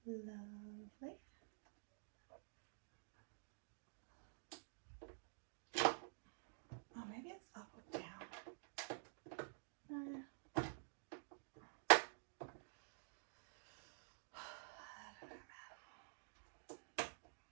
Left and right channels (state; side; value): silent; left; digital silence